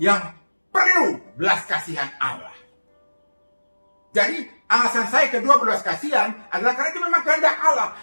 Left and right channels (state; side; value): inverted; both; correlation -1.00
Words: yang perlu belas kasihan Allah. Jadi alasan saya kedua berbelas kasihan adalah karena itu memang kehendak Allah.